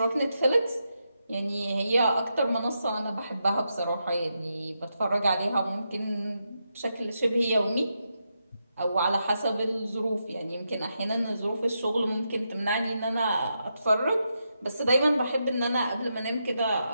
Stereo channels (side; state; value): both; inverted; correlation -0.84